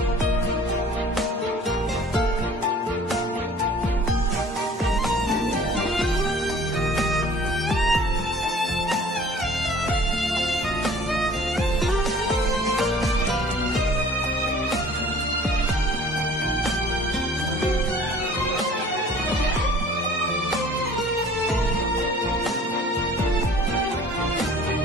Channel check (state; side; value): normal; both; correlation 0.50